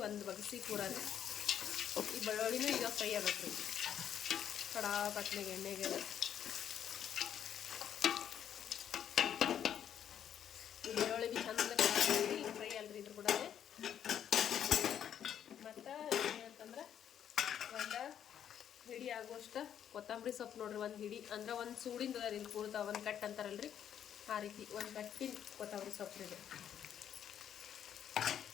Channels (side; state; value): right; quieter; 9.4 dB